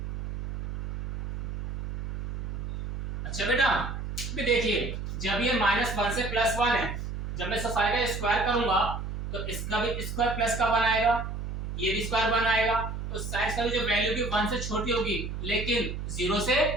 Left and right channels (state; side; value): noise; right; hum, 5 dB below the sound